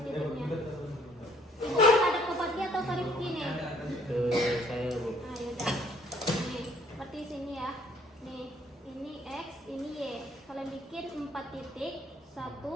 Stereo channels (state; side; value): normal; both; correlation 0.63